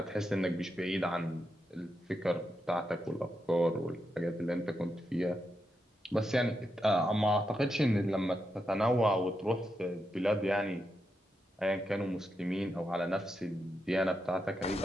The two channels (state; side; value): normal; both; correlation 0.85